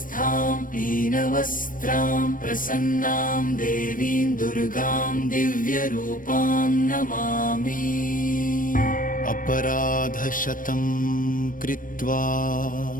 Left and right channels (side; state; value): right; late; 0.40 ms